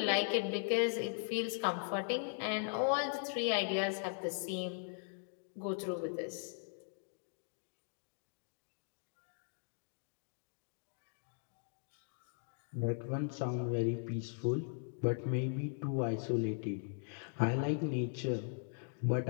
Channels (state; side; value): silent; right; digital silence